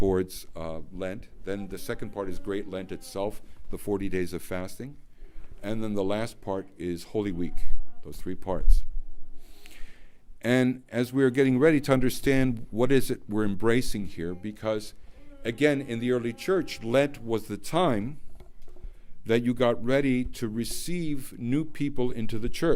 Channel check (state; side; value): identical; both; correlation 1.00